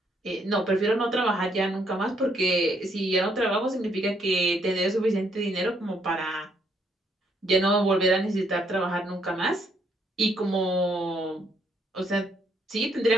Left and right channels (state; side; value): normal; both; correlation 0.71